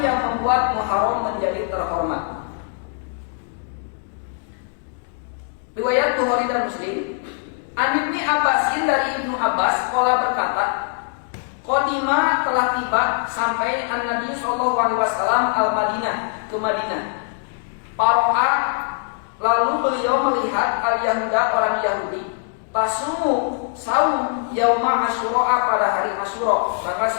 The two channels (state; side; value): silent; right; 63 dB below the other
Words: yang membuat Muharram menjadi terhormat. Riwayat Bukhari dan Muslim, An Ibnu Abbasin, dari Ibnu Abbas, qala berkata, qadima telah tiba sampai An-Nabi sallallahu alaihi wasallam al-Madinah, ke Madinah. Paro'a, lalu beliau melihat al-Yahuda, orang Yahudi, tasumu saum yauma Asyura, pada hari Asyura tanggal